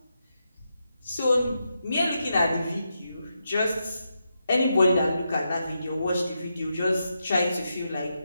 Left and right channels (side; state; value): both; inverted; correlation -0.85